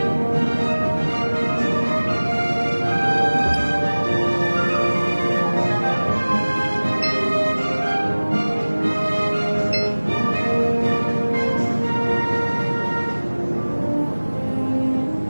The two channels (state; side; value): inverted; both; correlation -1.00